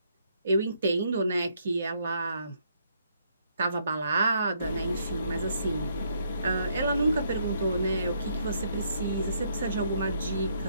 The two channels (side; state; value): both; inverted; correlation -0.71